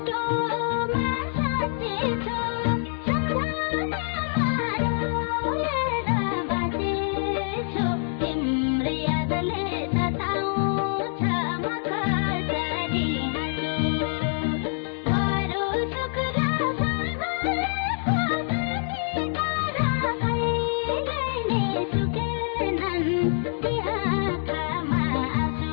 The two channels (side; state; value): right; silent; digital silence